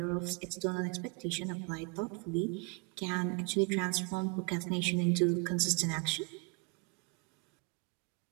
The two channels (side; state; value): left; quieter; 30.7 dB